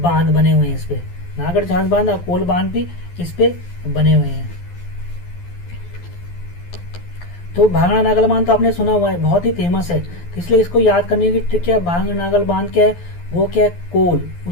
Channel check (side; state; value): right; late; 12 ms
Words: बने हुए हैं इस पे, नागर झांझ बांध और कोल बांध भी इस पे बने हुए हैं। तो भांगड़ा नागल बांध तो आपने सुना हुआ है, बहुत ही फेमस है, तो इसलिए इसको याद करने की ट्रिक क्या है, भांगड़ा नागल बांध क्या है, वो क्या है, कोल,